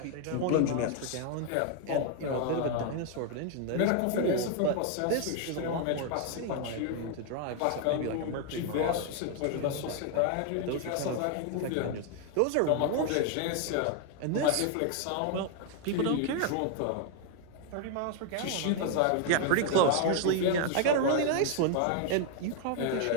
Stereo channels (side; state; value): both; different; correlation 0.00